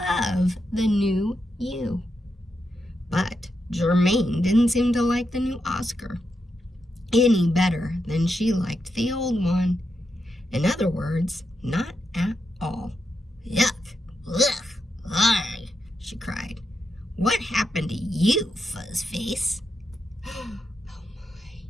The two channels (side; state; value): both; normal; correlation 0.84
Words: the new you. But Germaine didn't seem to like the new Oscar any better than she liked the old one. In other words, not at all. Yuck! Ugh! Arg! She cried. What happened to you, Fuzzface? Oh